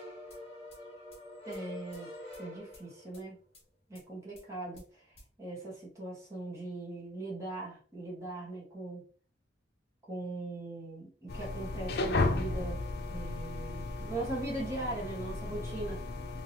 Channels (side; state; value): both; normal; correlation 0.55